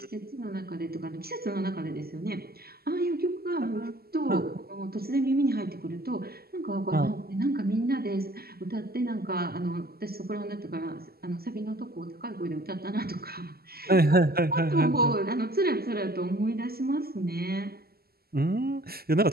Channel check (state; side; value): late; left; 0.45 ms